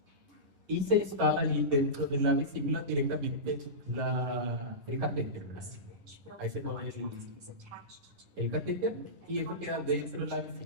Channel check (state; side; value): late; left; 10 ms